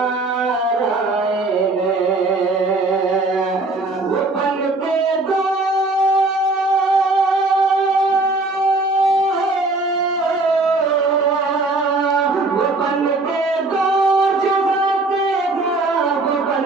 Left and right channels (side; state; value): left; quieter; 3.1 dB